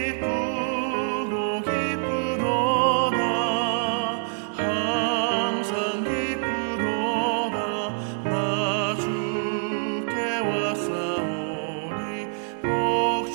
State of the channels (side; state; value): left; silent; 57 dB below the other